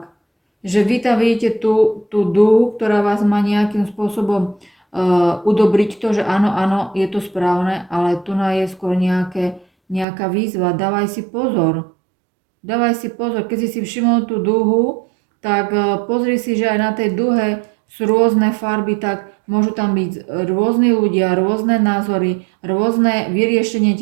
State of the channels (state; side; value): drops out; left; at 10.1 s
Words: Že vy tam vidíte tú dúhu, ktorá vás má nejakým spôsobom udobriť to, že áno, je to správne, ale tu je skôr nejaká výzva. Dávaj si pozor. Keď si všimol tú dúhu, tak pozri si, že aj na tej dúhe sú rôzne farby, tak môžu tam byť rôzni ľudia, rôzne názory, rôzne vyriešenie